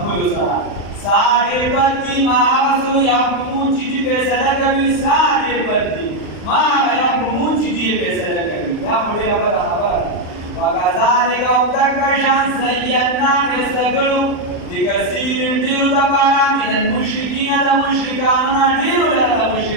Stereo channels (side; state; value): right; late; 39 ms